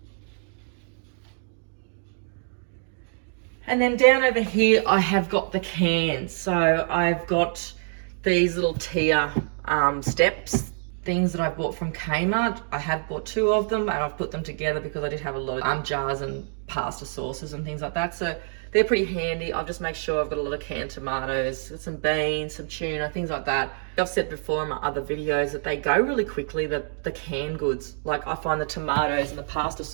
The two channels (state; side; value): silent; left; digital silence